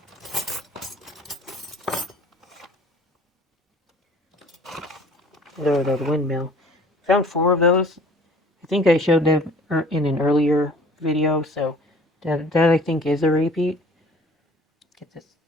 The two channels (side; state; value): both; normal; correlation 0.50